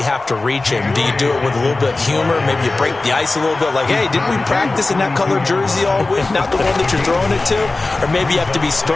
have to reach him. Do you do it with a little bit of humor? Maybe you break the ice a little bit like, hey, didn't we practice in that colored jersey all week, not the one that you're throwing it to? Or maybe you have to be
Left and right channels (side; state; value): right; quieter; 3.3 dB